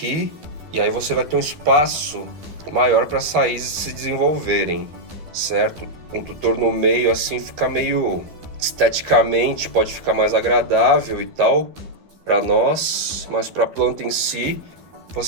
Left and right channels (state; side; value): late; left; 12 ms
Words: e aí você vai ter um espaço maior para as raízes se desenvolverem, certo? Um tutor no meio assim fica meio esteticamente, pode ficar mais agradável e tal para nós, mas para a planta em si,